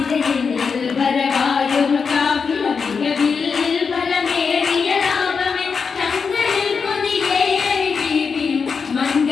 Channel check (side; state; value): right; quieter; 5.5 dB